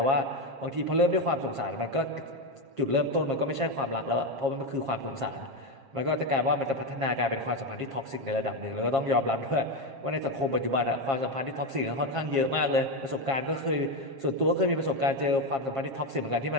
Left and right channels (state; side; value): late; left; 7.4 ms